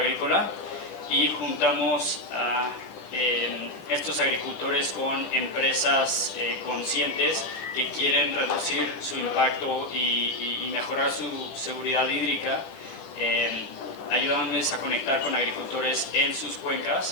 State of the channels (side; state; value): right; late; 10 ms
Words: y juntamos a estos agricultores con empresas conscientes que quieren reducir su impacto y mejorar su seguridad hídrica, ayudándoles a conectar con agricultores en sus